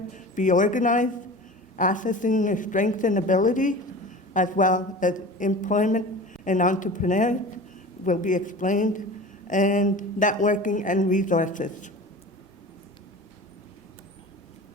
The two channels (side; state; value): both; normal; correlation 0.36